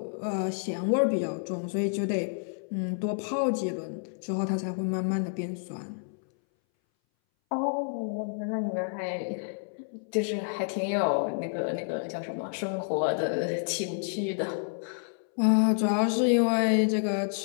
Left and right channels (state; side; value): silent; right; 58 dB below the other